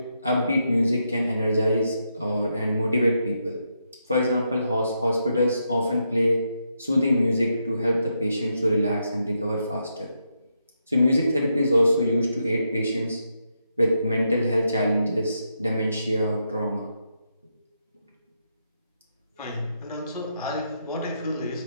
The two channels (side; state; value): both; inverted; correlation -0.81